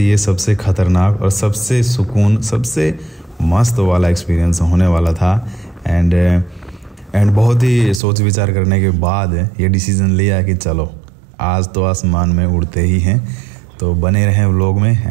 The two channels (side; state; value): left; drops out; at 8.0 s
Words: सबसे ख़तरनाक और सबसे सुकून, सबसे मस्त वाला एक्सपीरियंस होने वाला था। एंड बहुत ही सोच विचार करने के बाद ये डिसीज़न लिया कि चलो आज तो आसमान में उड़ते ही हैं। तो बने रहें व्लॉग में।